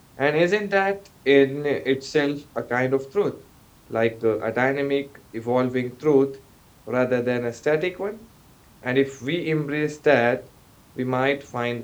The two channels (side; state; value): both; identical; correlation 1.00